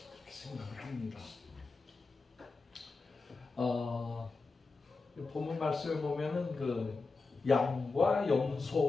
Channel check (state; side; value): quieter; right; 4.0 dB